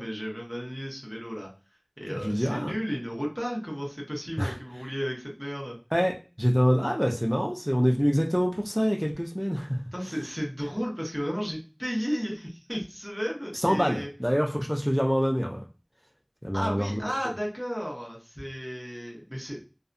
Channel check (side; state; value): both; identical; correlation 1.00